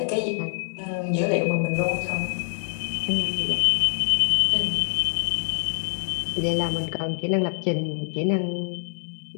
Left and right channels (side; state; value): right; silent; digital silence